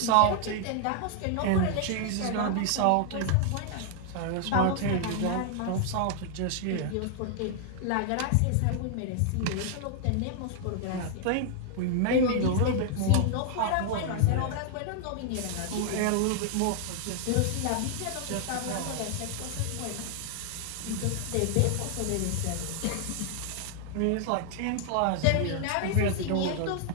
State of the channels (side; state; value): both; different; correlation 0.00